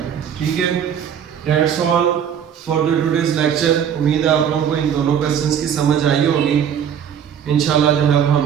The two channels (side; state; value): left; quieter; 8.4 dB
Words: ठीक है, that's all for the today's lecture. उम्मीद है आप लोगों को इन दोनों क्वेश्चंस की समझ आई होगी। इंशाल्लाह जो है हम